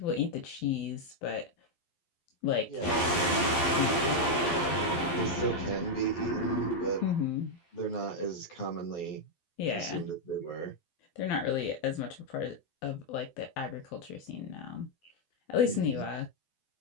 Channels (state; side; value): late; right; 12 ms